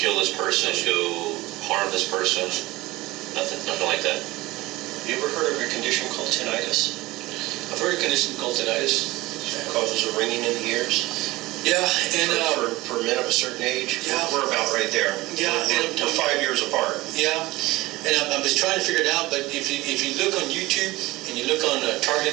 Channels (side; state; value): left; quieter; 19.7 dB